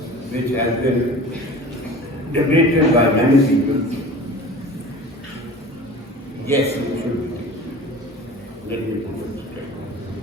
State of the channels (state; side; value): normal; both; correlation 0.39